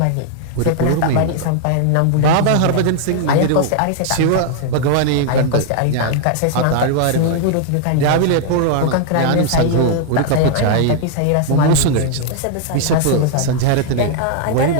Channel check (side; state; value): both; different; correlation 0.00